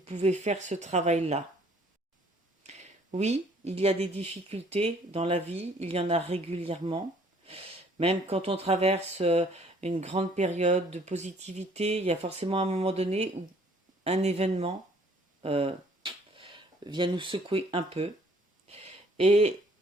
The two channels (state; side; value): normal; both; correlation 0.60